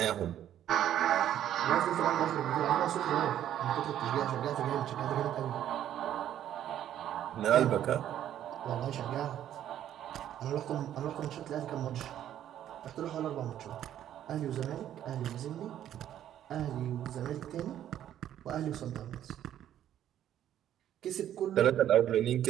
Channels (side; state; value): left; quieter; 11.1 dB